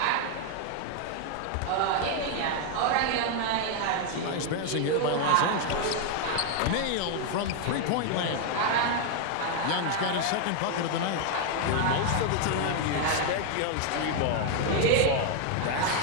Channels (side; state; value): both; different; correlation 0.00